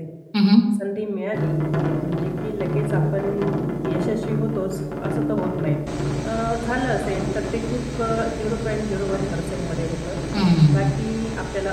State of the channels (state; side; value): identical; both; correlation 1.00